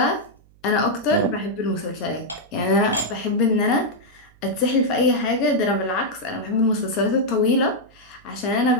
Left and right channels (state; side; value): noise; right; hum, 29 dB below the sound